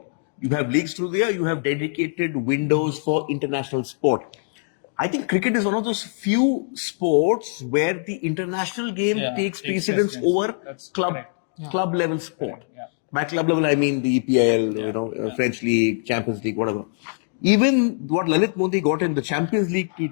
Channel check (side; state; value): right; silent; digital silence